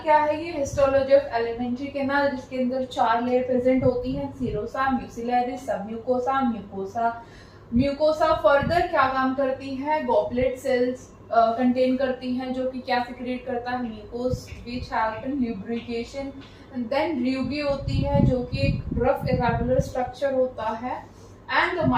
क्या है? ये हिस्टोलॉजी ऑफ एलिमेंट्री कैनाल, जिसके अंदर 4 लेयर प्रेजेंट होती हैं, सीरोसा, म्यूसिलेरिस, सब म्यूकोसा, म्यूकोसा। म्यूकोसा फर्दर क्या काम करती है? गॉबलेट सेल्स कंटेन करती हैं जो कि क्या सिक्रेट करता है? Mucus which help in lubrication. Then र्यूबी होती है जो कि एक रफ इरेगुलर स्ट्रक्चर होता है, and the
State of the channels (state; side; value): identical; both; correlation 1.00